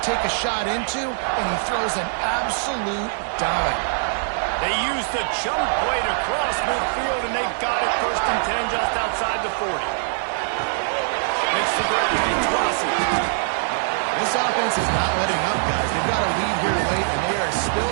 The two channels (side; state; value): left; silent; 64 dB below the other